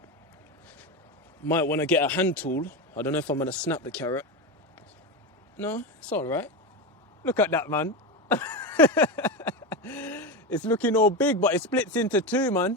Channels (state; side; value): normal; both; correlation 0.17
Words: Might want to get a hand tool. I don't know if I'm going to snap the carrot. No, it's all right. Look at that, man. It's looking all big, but it splits into two, man.